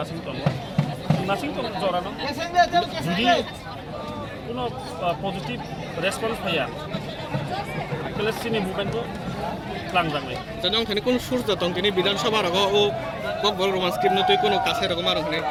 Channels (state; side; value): identical; both; correlation 1.00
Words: nasing tong jorano jadi কোনো positive response পাইয়া তাহলে সিনি মুভমেন্টও লাংজাংলাই janong thani kun surja tong tini বিধানসভা রগ ও ককবল Roman scheme নতুই কোনো কাছে রকম আর ওখানে